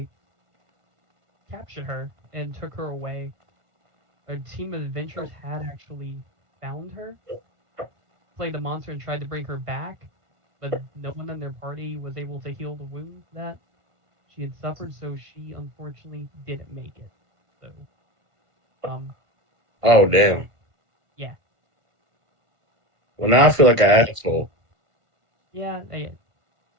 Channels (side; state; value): left; late; 1.5 ms